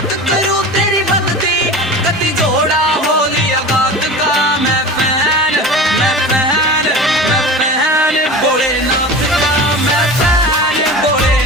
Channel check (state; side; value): normal; both; correlation 0.33